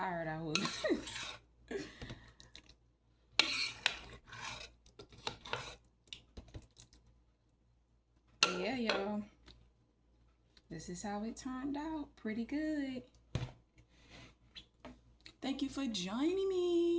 I was. But yeah, y'all. This is how it turned out. Pretty good. Thank you for joining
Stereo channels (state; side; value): identical; both; correlation 1.00